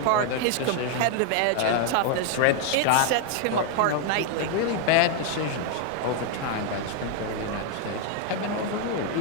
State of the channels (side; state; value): both; different; correlation 0.00